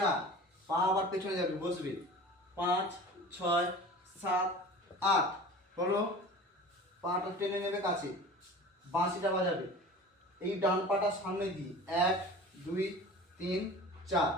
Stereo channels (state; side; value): normal; both; correlation 0.39